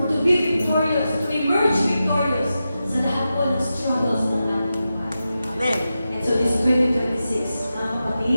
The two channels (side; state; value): both; inverted; correlation -0.91